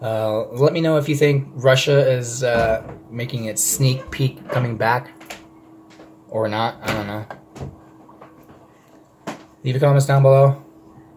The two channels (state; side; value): identical; both; correlation 1.00